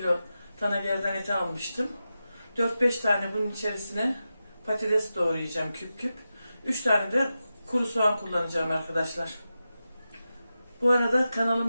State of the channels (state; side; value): inverted; both; correlation -0.91